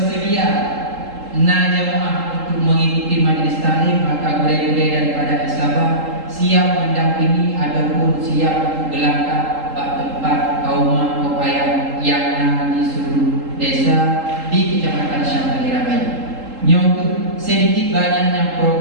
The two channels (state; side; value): late; left; 3.8 ms